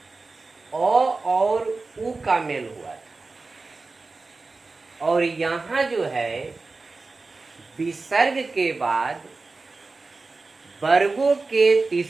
अ और उ का मेल हुआ था और यहाँ जो है विसर्ग के बाद वर्गों के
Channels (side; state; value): left; quieter; 3.7 dB